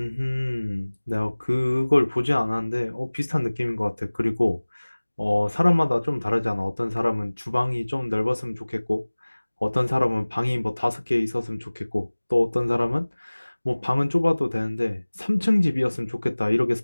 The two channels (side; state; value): both; inverted; correlation -1.00